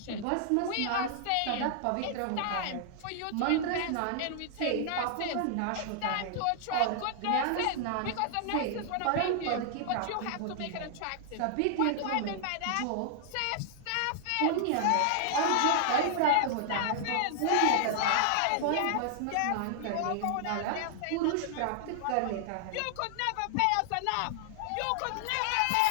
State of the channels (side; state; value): both; different; correlation -0.01